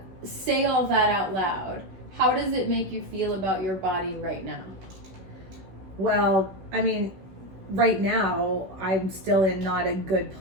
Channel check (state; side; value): late; left; 16 ms